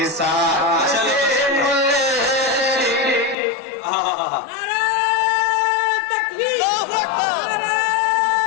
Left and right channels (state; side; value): drops out; right; at 3.4 s